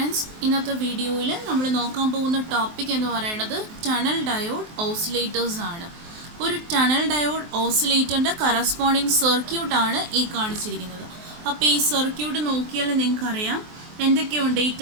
ഇന്നത്തെ വീഡിയോയിൽ നമ്മൾ നോക്കാൻ പോകുന്ന ടോപ്പിക് എന്ന് പറയുന്നത് ടണൽ ഡയോഡ് ഓസിലേറ്റേഴ്സ് ആണ്. ഒരു ടണൽ ഡയോഡ് ഓസിലേറ്ററിൻ്റെ കറസ്പോണ്ടിങ് സർക്യൂട്ട് ആണ് ഈ കാണിച്ചിരിക്കുന്നത്. അപ്പോൾ ഈ സർക്യൂട്ട് നോക്കിയാൽ നിങ്ങൾക്കറിയാം എന്തൊക്കെയുണ്ട് ഈ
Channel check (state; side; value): late; left; 23 ms